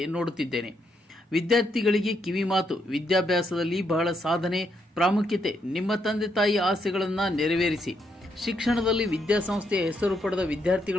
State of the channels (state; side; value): normal; both; correlation 0.77